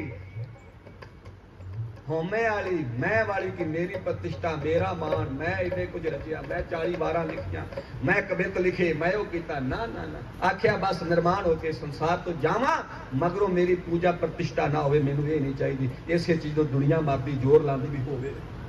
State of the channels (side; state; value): both; identical; correlation 1.00